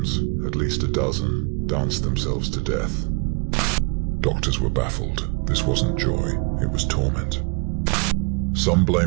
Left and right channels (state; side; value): quieter; left; 32.4 dB